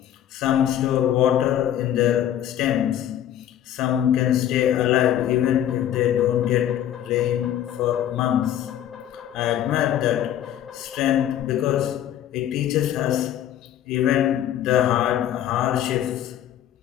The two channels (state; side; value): quieter; right; 11.1 dB